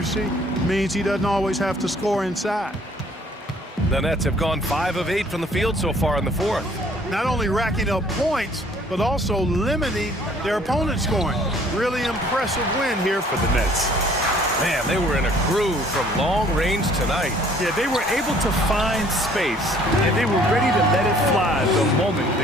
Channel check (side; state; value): both; normal; correlation 0.58